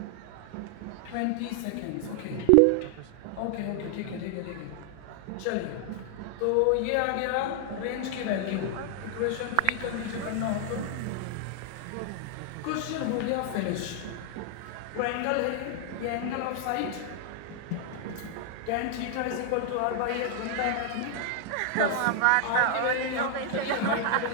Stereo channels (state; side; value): different; both; correlation 0.00